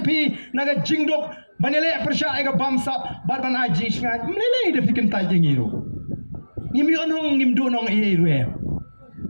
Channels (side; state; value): both; inverted; correlation -1.00